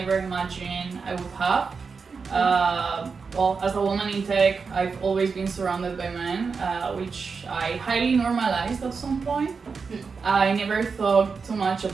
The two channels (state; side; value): quieter; left; 5.1 dB